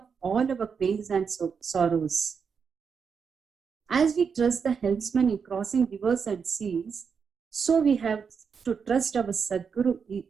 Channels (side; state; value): left; quieter; 6.1 dB